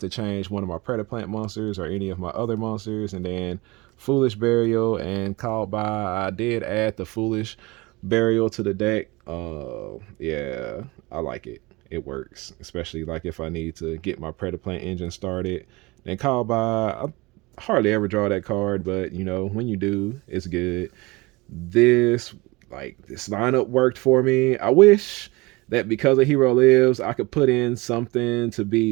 to change one of my Predaplant monsters or any of my other monsters. And then Foolish Burial and Called By. I did add the Foolish Burial to the deck. Yeah, I like it. It works, especially like if I need to get my Predaplant engine started. And Called By, I hardly ever draw that card, but you know, when you do, it's good. This lineup worked for me. I wish that because a hero lives, I could put in something to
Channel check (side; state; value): left; quieter; 23.6 dB